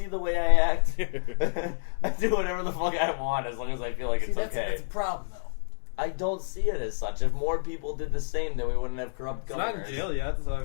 the way I act? I do whatever the fuck I want as long as I feel like See, it's that's, okay. that's a problem, though. I don't see it as such. If more people did the same, then we wouldn't have corrupt It's not governors. in jail yet, so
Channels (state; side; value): silent; right; 59 dB below the other